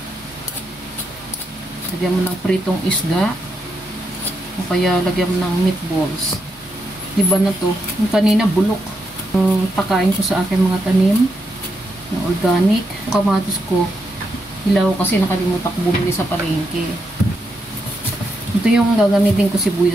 Lagyan mo ng pritong isda. O kaya lagyan mo ng meatballs. Diba na to? Yung kanina bulok. Yung pakain ko sa aking mga tanim na organic. Yung kamatis ko, hilaw kasi nakalimutan ko bumili sa palengke. Ito yung gagamitin ko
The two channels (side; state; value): both; normal; correlation 0.82